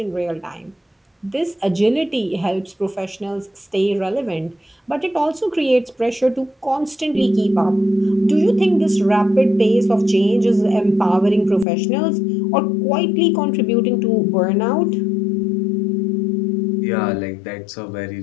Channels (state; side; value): drops out; right; at 11.7 s